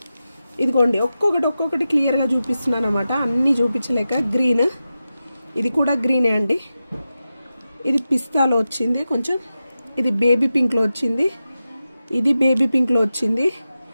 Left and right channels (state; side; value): inverted; both; correlation -0.92